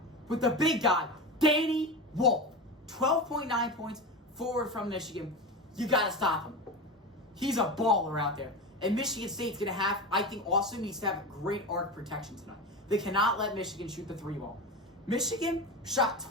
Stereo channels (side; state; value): both; normal; correlation 0.23